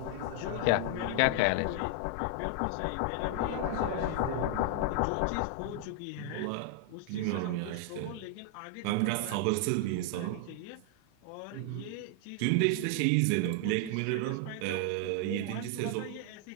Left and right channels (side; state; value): both; different; correlation 0.00